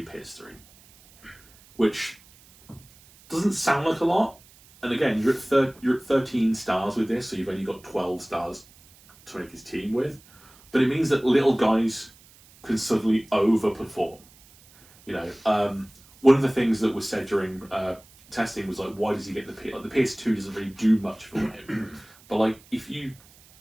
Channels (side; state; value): right; noise; hiss, 26 dB below the sound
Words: Pierce 3. Which doesn't sound like a lot, and again, you're at 13 stars with this, so you've only got 12 stars to make his team with. But it means that little guys can suddenly overperform. One of the things that was said during testing was like, why does he get the PS? Like, the PS2 doesn't really do much for him. But like, if you